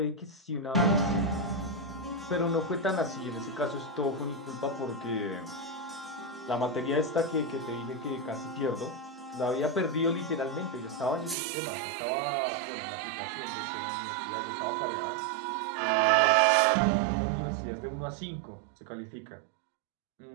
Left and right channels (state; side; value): drops out; left; at 11.4 s